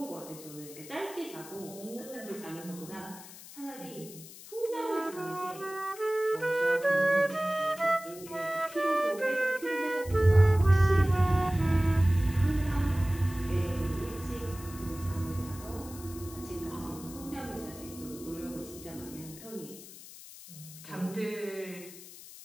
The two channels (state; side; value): noise; left; hiss, 16 dB below the sound